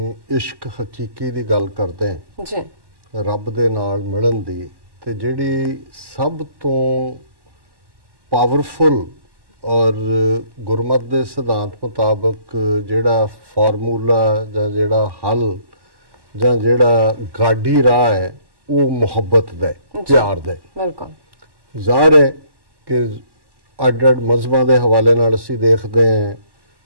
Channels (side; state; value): left; late; 1.1 ms